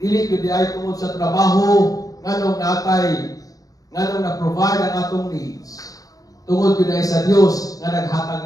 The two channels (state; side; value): late; right; 0.17 ms